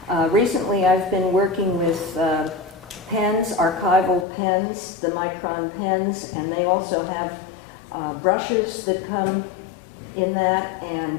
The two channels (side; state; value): right; drops out; at 4.2 s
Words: Recently I've been working with pens, archival pens, the Micron pens, and they also have brushes that come in that, and